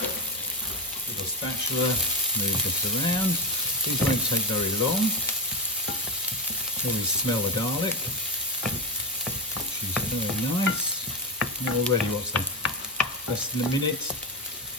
Little spatula, move it around. These won't take very long. Always smell the garlic, which is very nice. And already, what's that? Less than a minute,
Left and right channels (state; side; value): normal; both; correlation 0.18